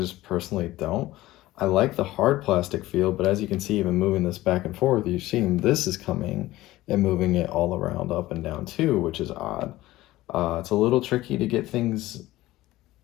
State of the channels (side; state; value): right; quieter; 17.0 dB